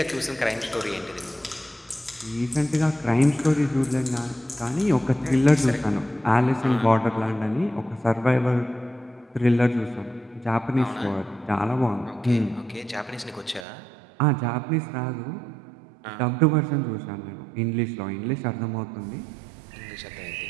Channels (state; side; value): drops out; left; at 13.7 s